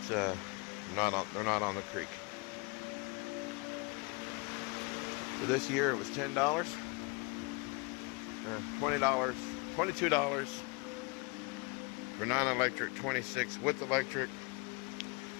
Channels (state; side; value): quieter; right; 29.9 dB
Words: they're not on the creek. For this year, it was $10, $20, $22 for non-electric, $26 with electric,